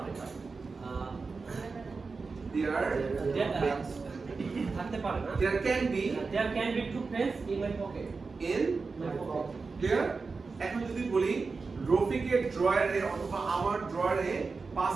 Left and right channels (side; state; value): left; quieter; 4.4 dB